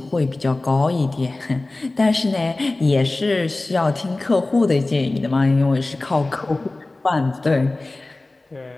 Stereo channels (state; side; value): quieter; right; 3.0 dB